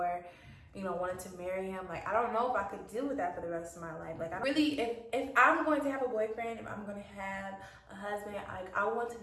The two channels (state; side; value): identical; both; correlation 1.00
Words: you know, wanted to marry him. Like, I don't know if I could deal with that for the rest of my life. Like, if I'm going to have a boyfriend, if I'm going to have a husband, like, I want to